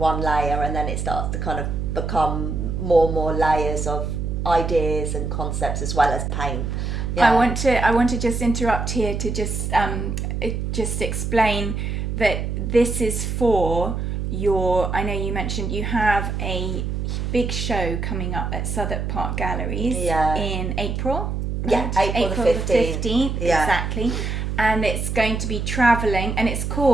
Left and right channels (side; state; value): right; noise; hum, 2 dB below the sound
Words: layer, and then it starts to kind of become more and more layers of ideas and concepts as well as paint. I want to just interrupt here to just explain that this is for your, I know you mentioned you have a big show coming up at Southwark Park Galleries in April. Right? Yeah, April the 15th. Exactly. And it's going to be travelling, and it's